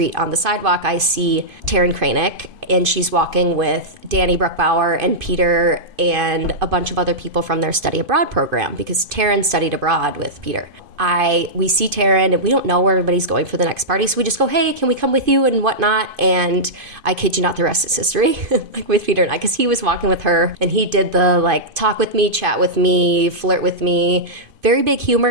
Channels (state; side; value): late; left; 2.5 ms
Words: on the sidewalk. I see Taryn Kranick, and she's walking with Danny Bruckbauer and Peter and a bunch of other people from their study abroad program, because Taryn studied abroad with Peter. We see Taryn, and we don't know where everybody's going for the next party, so we just go, hey, can we come with you and whatnot? And I kid you not, the rest is history, like with Peter and I, because he was walking with her, and he did the like talk with me, chat with me, flirt with me. Very big